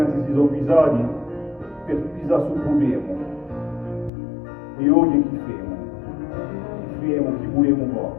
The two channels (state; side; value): drops out; right; at 4.1 s